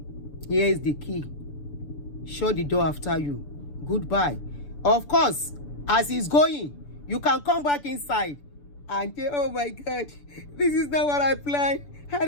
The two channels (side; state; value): right; late; 6.9 ms